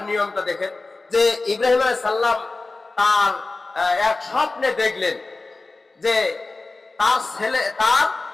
নিয়মটা দেখেন যে ইব্রাহিম আলাইহিস সালাম তার এক স্বপ্নে দেখলেন যে তার ছেলে তার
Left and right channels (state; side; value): quieter; right; 3.5 dB